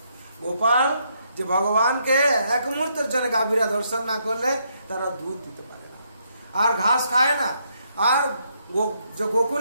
গোপাল যে ভগবানকে এক মুহূর্তের জন্য গাভীরা দর্শন না করলে তারা দুধ দিতে পারে না, আর ঘাস খায় না। আর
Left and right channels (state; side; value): inverted; both; correlation -0.75